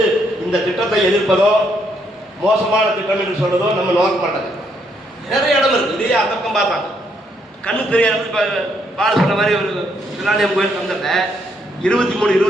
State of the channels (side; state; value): both; normal; correlation 0.74